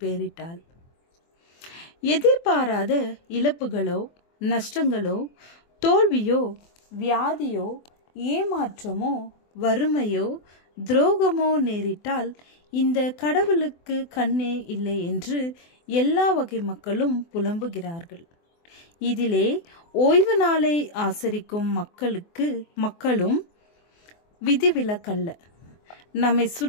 பெயரிட்டாள். எதிர்பாராத இழப்புகளோ, நஷ்டங்களோ, தோல்வியோ, வியாதியோ, ஏமாற்றமோ, வறுமையோ, துரோகமோ நேரிட்டால் இந்த கடவுளுக்கு கண்ணே இல்லை என்று எல்லா வகை மக்களும் புலம்புகிறார்கள். இதிலே ஓய்வு நாளை ஆசரிக்கும் மக்களும் விதிவிலக்கல்ல. நம்மை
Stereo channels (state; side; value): late; right; 24 ms